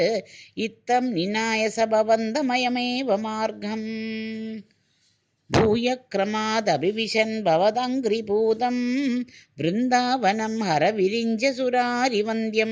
इत्थं निनाय स भवन्तमयमेव मार्गम् भूयक्रमादभिविशन् भवदङ्घ्रिपूतं वृन्दावनं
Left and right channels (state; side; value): identical; both; correlation 1.00